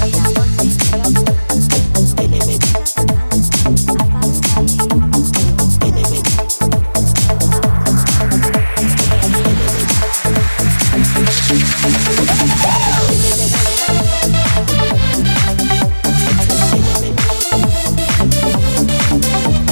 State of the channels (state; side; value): inverted; both; correlation -1.00